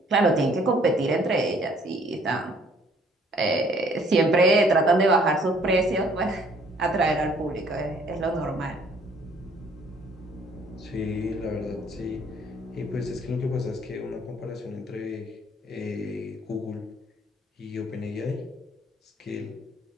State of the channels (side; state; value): both; normal; correlation 0.60